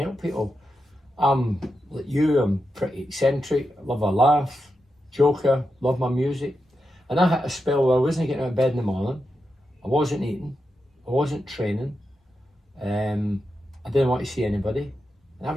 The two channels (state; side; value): normal; both; correlation 0.88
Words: people. I'm like you. I'm pretty eccentric. Love a laugh, joker. Love my music. And I had a spell where I wasn't getting out of bed in the morning. I wasn't eating. I wasn't training. I didn't want to see anybody. And I